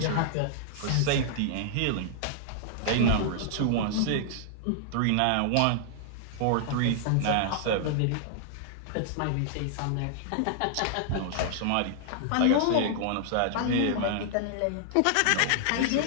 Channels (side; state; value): both; different; correlation -0.01